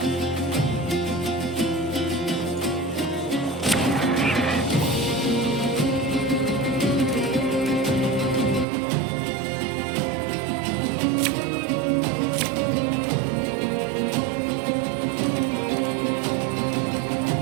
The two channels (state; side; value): drops out; left; at 8.7 s